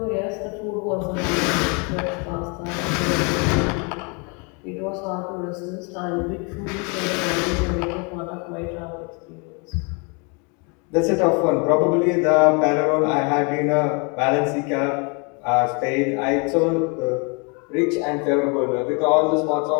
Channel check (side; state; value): right; quieter; 33.2 dB